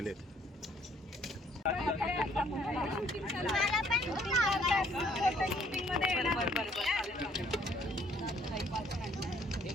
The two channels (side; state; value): both; normal; correlation 0.63